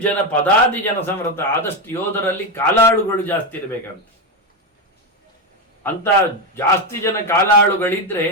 ಜನ ಪದಾದಿ ಜನ ಸಂವೃತ. ಆದಷ್ಟು ಯೋಧರಲ್ಲಿ ಕಾಲಾಳುಗಳು ಜಾಸ್ತಿ ಇರಬೇಕಂತ. ಅಂತ ಜಾಸ್ತಿ ಜನ ಕಾಲಾಳುಗಳಿದ್ರೆ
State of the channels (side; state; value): both; normal; correlation 0.10